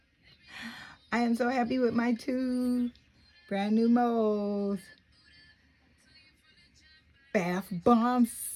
am so happy with my 2 brand new molds. Bath Bomb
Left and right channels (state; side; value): identical; both; correlation 1.00